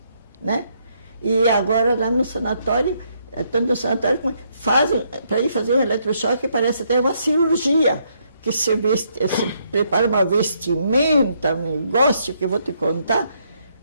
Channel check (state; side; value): inverted; both; correlation -0.73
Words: né? E agora lá no sanatório, tanto no sanatório como fazem, para ir fazer um eletrochoque, parece até uma cirurgia, que se prepara uma vestimenta, um negócio que eu vou te contar.